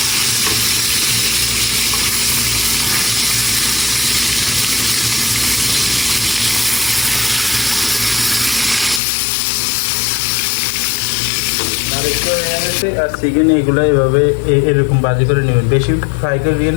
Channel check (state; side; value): drops out; right; at 9.0 s